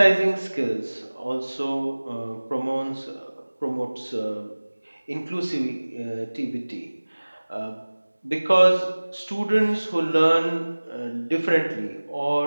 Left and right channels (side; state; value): both; inverted; correlation -1.00